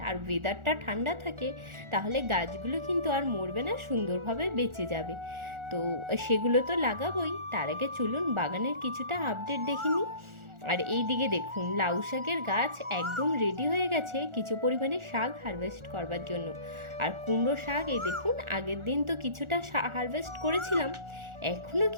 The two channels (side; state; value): left; late; 1.4 ms